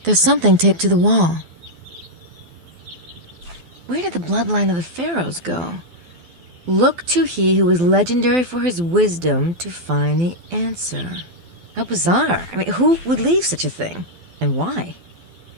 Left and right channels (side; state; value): left; late; 12 ms